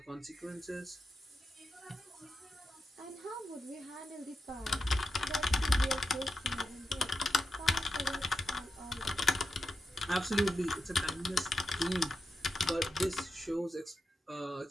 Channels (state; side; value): normal; both; correlation 0.89